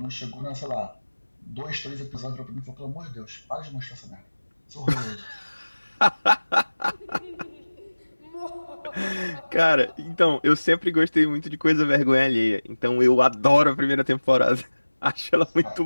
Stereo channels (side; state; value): both; inverted; correlation -1.00